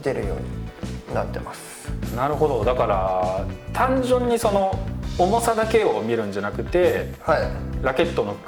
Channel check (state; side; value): identical; both; correlation 1.00